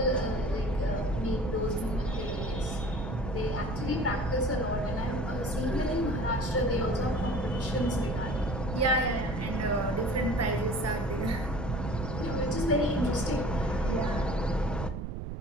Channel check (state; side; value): noise; right; rumble, 6 dB below the sound